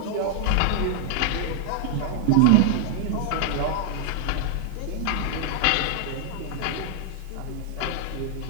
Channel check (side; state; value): both; different; correlation -0.01